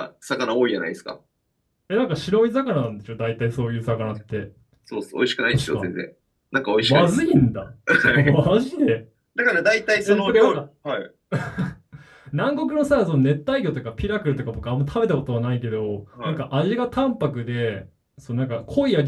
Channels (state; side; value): identical; both; correlation 1.00